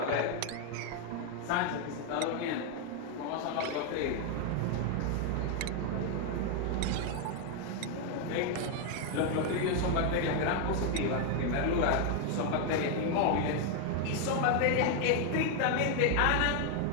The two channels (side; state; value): both; different; correlation 0.01